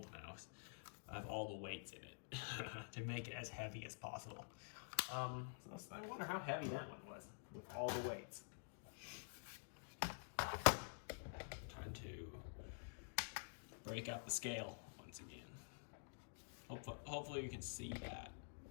mouse, I have all the weights in it to make it as heavy as possible. So I wonder how heavy that one was with all the weights. Time to break out the scale once again. Hopefully you can see that.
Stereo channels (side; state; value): right; silent; digital silence